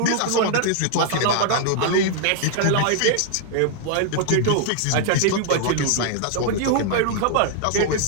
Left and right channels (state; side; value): different; both; correlation 0.00